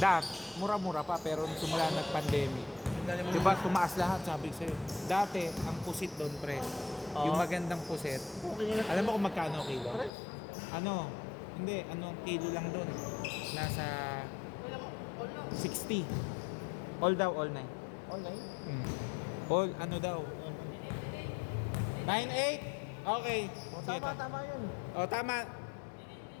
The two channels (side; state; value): right; drops out; at 10.1 s